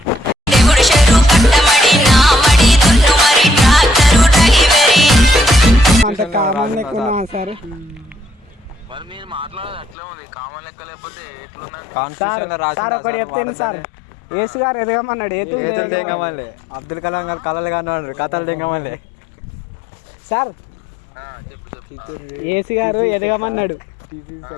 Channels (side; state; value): right; drops out; at 10.0 s